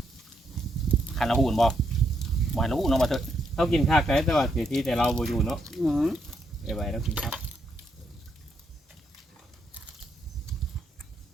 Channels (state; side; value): normal; both; correlation 0.77